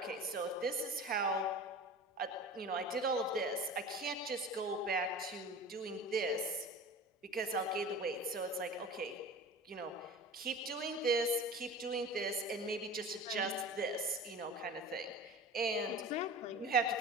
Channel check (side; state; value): both; normal; correlation 0.36